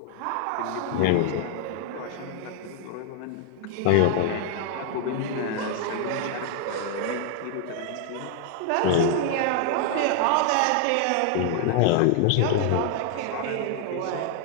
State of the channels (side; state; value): both; different; correlation 0.00